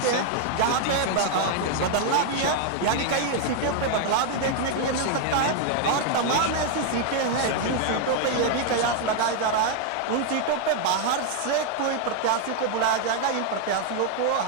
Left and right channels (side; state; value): both; different; correlation 0.00